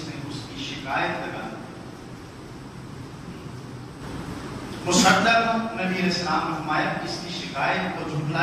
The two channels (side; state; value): both; identical; correlation 1.00